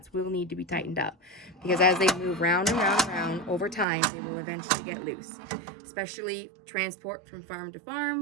will need to be tightened up because as they move round and round and round over time, they will eventually get loose. Especially transport from farm to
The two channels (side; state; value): left; drops out; at 3.9 s